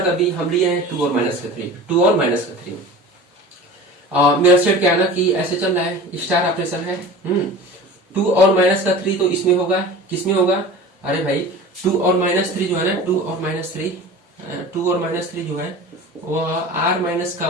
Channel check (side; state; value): both; normal; correlation 0.37